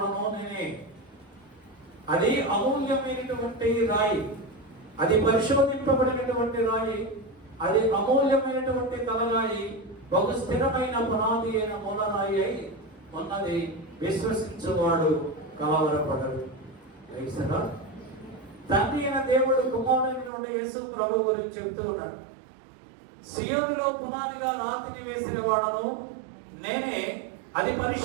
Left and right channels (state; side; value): drops out; left; at 20.3 s